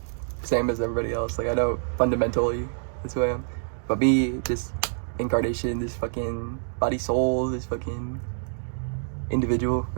same as everybody else. Like, I know fundamentally that's who I am. But me, this incarnation, this fucking body soul, this fucking individual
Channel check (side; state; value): left; silent; digital silence